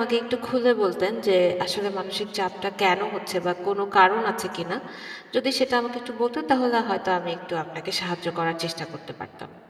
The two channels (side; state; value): both; identical; correlation 1.00